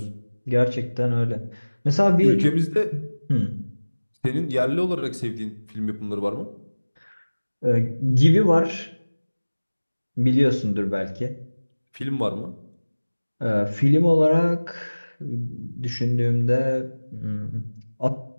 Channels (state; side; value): inverted; both; correlation -1.00